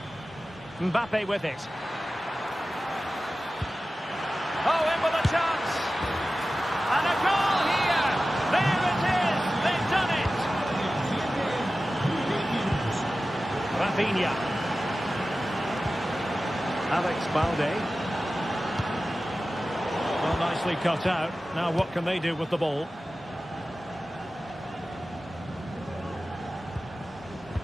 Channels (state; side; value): normal; both; correlation 0.95